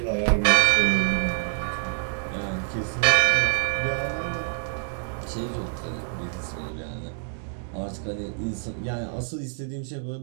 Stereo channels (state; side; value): silent; left; digital silence